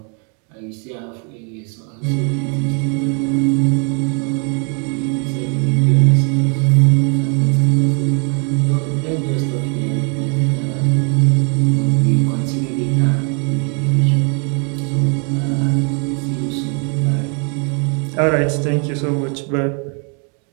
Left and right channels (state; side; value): quieter; left; 38.3 dB